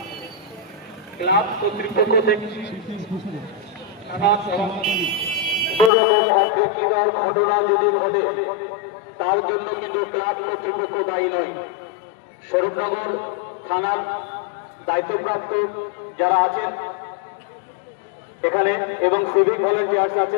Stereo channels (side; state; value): right; drops out; at 5.9 s